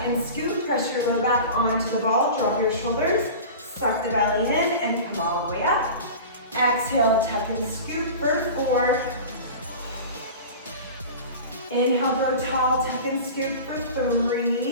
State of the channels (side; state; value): both; inverted; correlation -0.34